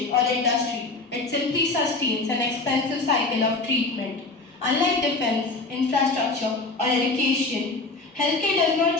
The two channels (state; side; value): quieter; right; 3.5 dB